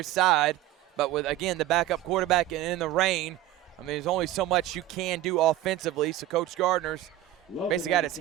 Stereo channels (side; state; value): left; quieter; 13.8 dB